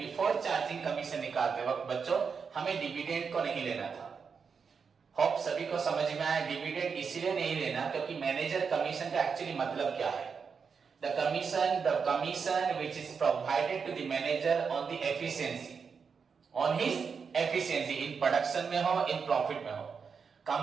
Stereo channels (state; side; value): quieter; left; 5.9 dB